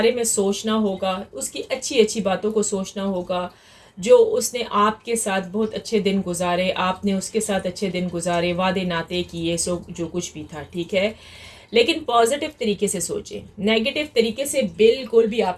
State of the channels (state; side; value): identical; both; correlation 1.00